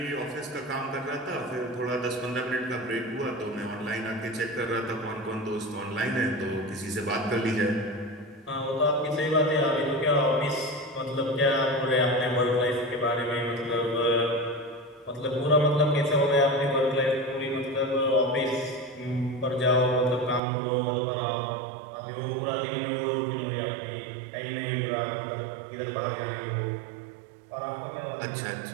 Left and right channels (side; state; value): left; drops out; at 20.4 s